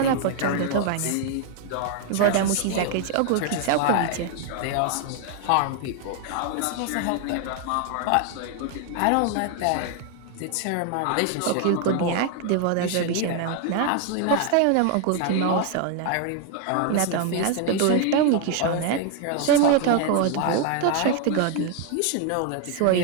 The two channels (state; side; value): different; both; correlation 0.00